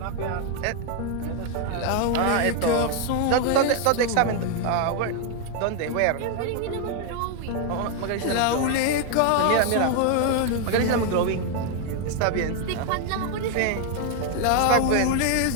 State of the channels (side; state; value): both; different; correlation 0.00